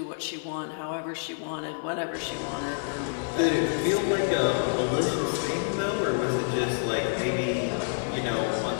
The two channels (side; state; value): right; silent; 55 dB below the other